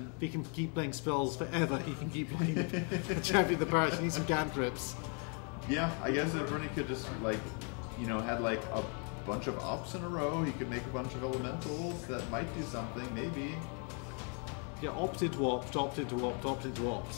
If he can keep playing spells forever, he can keep playing the champion of the parish. He needs some cantrips. Yeah, I guess if Bernie could just, like, you know, had like a bunch of ops in a row, he could make a bunch of elementals that might do something, maybe. Yeah, opted to opt, opted to opt, opted to opt.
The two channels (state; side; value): quieter; right; 38.5 dB